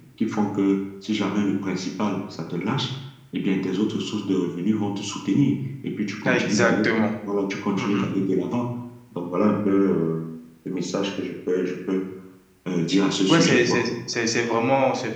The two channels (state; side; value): identical; both; correlation 1.00